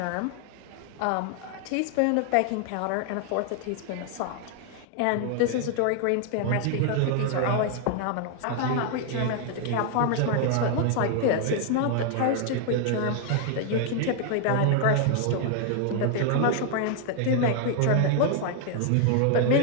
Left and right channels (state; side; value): different; both; correlation 0.00